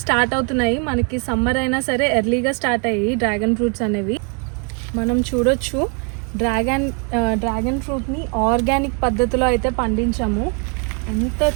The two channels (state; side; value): quieter; left; 37.3 dB